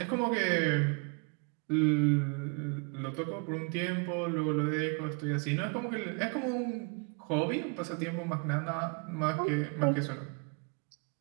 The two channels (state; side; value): quieter; left; 35.0 dB